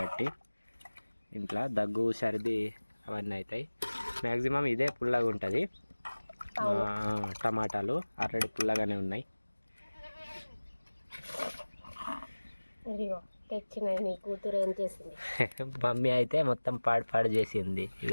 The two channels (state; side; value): inverted; both; correlation -1.00